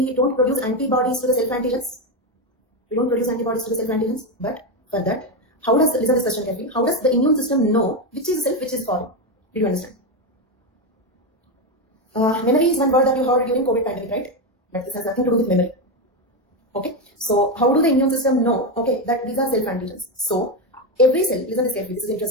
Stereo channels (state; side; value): normal; both; correlation 0.11